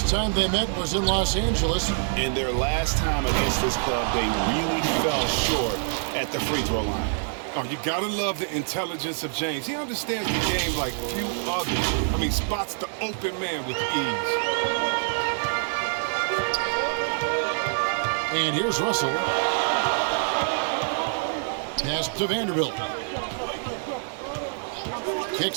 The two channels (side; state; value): left; silent; digital silence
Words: time they met was in Los Angeles. In their last time against this club, they really fell short at the free throw line. Oh, you gotta love the intelligence of James. He understands the game like few others. I mean, spots the open man with ease. And here's Russell. Pass to Vanderbilt.